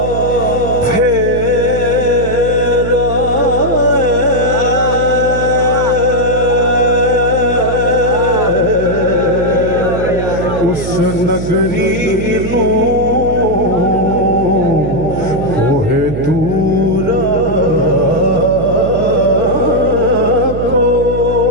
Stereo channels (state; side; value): noise; right; hum, 6 dB below the sound